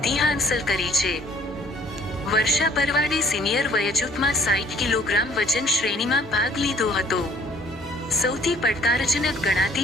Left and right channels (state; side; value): normal; both; correlation 0.58